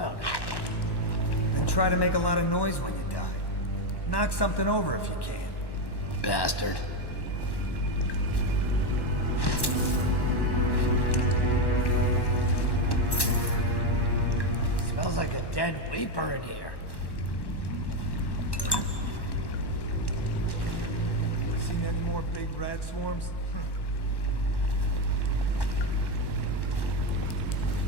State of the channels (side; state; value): right; late; 1.1 ms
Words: Then try to make a lot of noise when you die. Knock something over if you can. Bastard. Smells like a dead weeper in here. Seen any more big rat swarms?